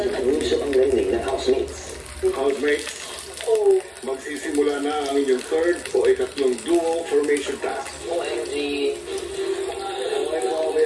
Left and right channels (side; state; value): both; identical; correlation 1.00